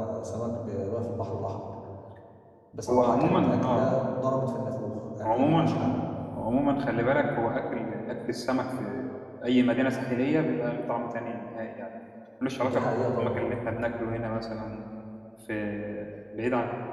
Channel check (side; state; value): both; identical; correlation 1.00